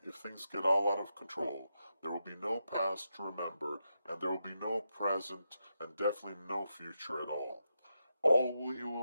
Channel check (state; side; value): inverted; both; correlation -0.86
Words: if things get all out of control, there will be no past to remember, and there will be no present, and definitely no future at all. All you